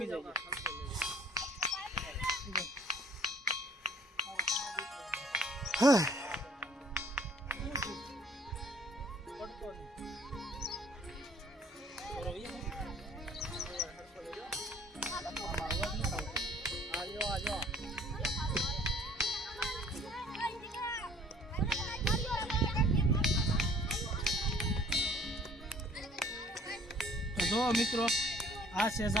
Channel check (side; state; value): both; normal; correlation 0.55